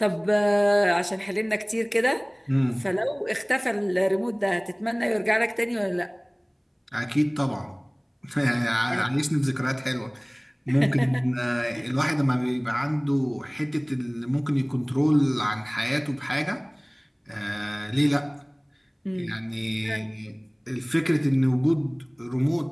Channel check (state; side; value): identical; both; correlation 1.00